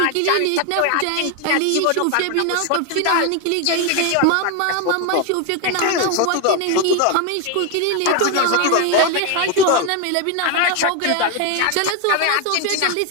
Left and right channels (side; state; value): both; different; correlation 0.01